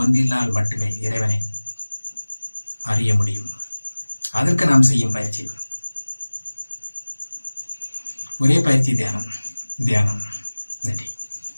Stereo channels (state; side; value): inverted; both; correlation -1.00